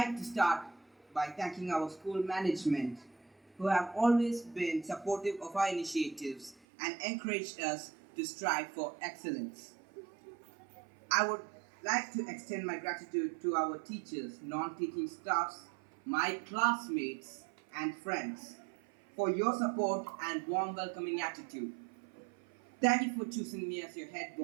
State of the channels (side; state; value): left; drops out; at 6.6 s